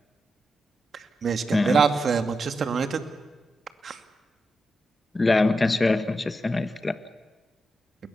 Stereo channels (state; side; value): normal; both; correlation 0.87